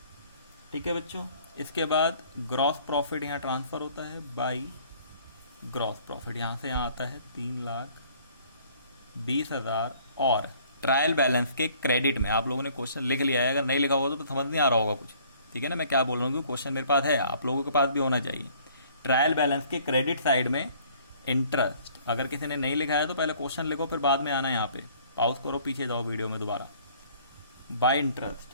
ठीक है बच्चों। इसके बाद ग्रॉस प्रॉफिट यहाँ ट्रांसफर होता है बाई ग्रॉस प्रॉफिट, यहाँ से यहाँ आता है 3,20,000, और ट्रायल बैलेंस के क्रेडिट में आप लोगों ने क्वेश्चन लिख लिया है, अगर नहीं लिखा होगा तो समझ नहीं आ रहा होगा कुछ, ठीक है ना। मैं क्या बोल रहा हूँ, क्वेश्चन मेरे पास है, आप लोगों के पास भी होना चाहिए। ट्रायल बैलेंस के क्रेडिट साइड में इंटरेस्ट, अगर किसी ने नहीं लिखा है तो पहले क्वेश्चन लिखो, फिर बाद में आना यहाँ पे, पॉज करो, पीछे जाओ वीडियो में दोबारा। बाय इंटरेस्ट,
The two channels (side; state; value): both; inverted; correlation -0.57